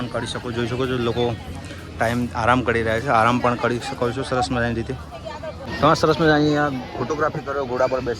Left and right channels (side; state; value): both; identical; correlation 1.00